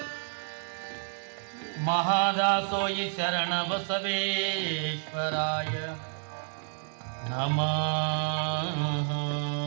ಮಹಾದಾಸೋಯಿ ಶರಣ ಬಸವೇಶ್ವರಾಯ ನಮಃ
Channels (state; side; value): silent; left; 58 dB below the other